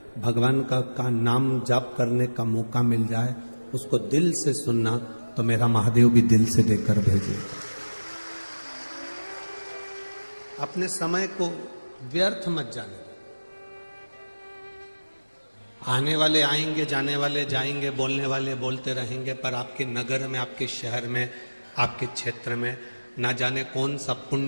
भगवान का नाम जाप करने का मौका मिल जाए, उसको दिल से सुनना, तो मेरा महादेव भी दिल से देकर भेजेगा। अपने समय को व्यर्थ मत जाने। आने वाले आएंगे, जाने वाले जाएंगे, बोलने वाले बोलते रहेंगे, पर आपके नगर में, आपके शहर में, आपके क्षेत्र में ना जाने कौन सा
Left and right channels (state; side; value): inverted; both; correlation -1.00